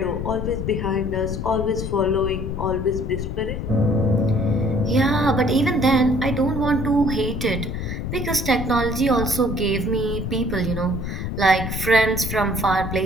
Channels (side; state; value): left; noise; rumble, 4 dB below the sound